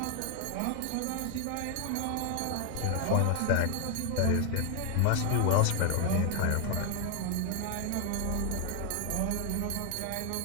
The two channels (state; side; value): different; both; correlation 0.00